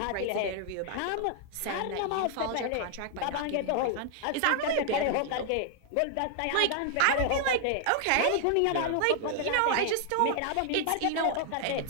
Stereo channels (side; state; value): both; different; correlation 0.00